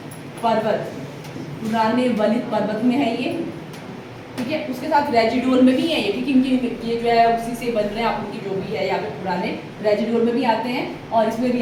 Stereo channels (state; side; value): identical; both; correlation 1.00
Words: पर्वत, पुराने वलित पर्वत में है ये, ठीक है। उसके साथ रेजिडुअल में भी है ये, ठीक है, इनकी ये जो है उसी से बन रहे हैं आप उनकी जो भी है यहाँ पे, पुराने रेजिडुअल में भी आते हैं और इसमें भी